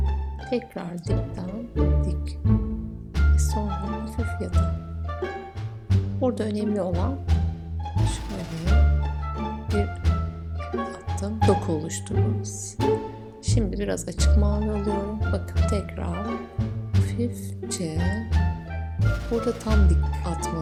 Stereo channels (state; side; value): identical; both; correlation 1.00